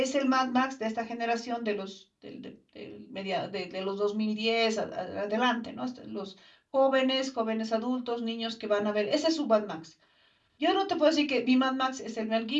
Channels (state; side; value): identical; both; correlation 1.00